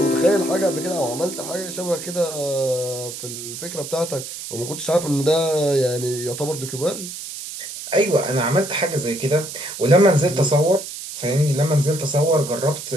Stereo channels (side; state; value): right; noise; hiss, 9 dB below the sound